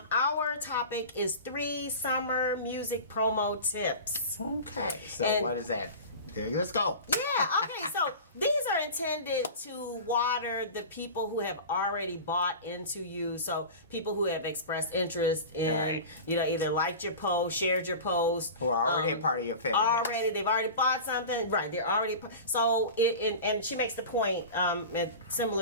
topic is 3 summer music promo tips. Okay, so what is that? Okay, let's go. Yeah, okay, so these are intended to water the people who have already bought into you. So people who have expressed interest in, either liked your post, shared your post. Who are already a part of your fan base. They've already bought something. Right, they're already, so, and she makes the point,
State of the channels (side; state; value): both; inverted; correlation -0.32